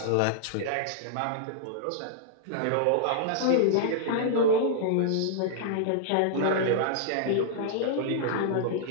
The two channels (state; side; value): different; both; correlation -0.01